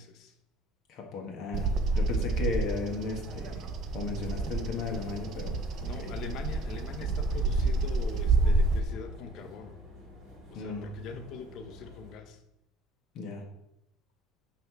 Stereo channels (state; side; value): normal; both; correlation 0.54